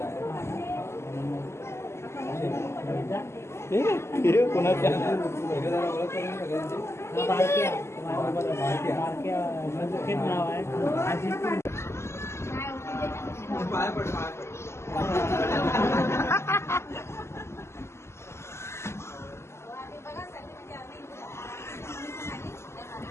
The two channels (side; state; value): right; late; 0.13 ms